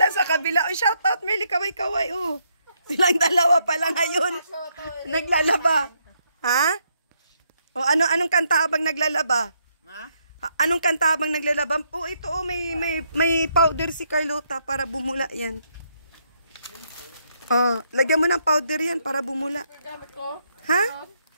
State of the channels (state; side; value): inverted; both; correlation -0.75